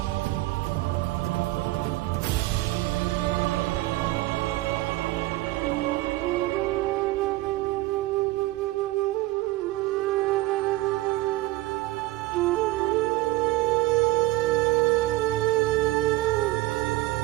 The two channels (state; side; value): quieter; left; 18.4 dB